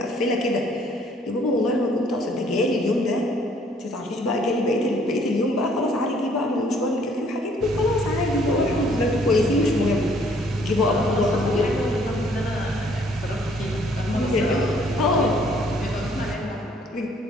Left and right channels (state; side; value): normal; both; correlation 0.62